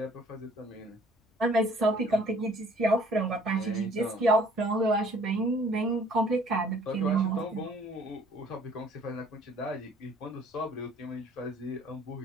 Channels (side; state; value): both; normal; correlation 0.57